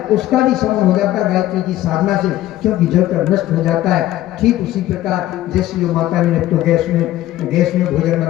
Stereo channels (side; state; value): right; quieter; 14.5 dB